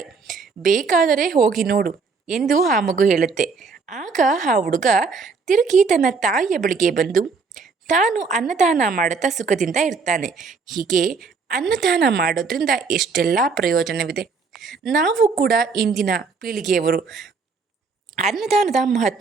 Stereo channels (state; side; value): quieter; left; 4.8 dB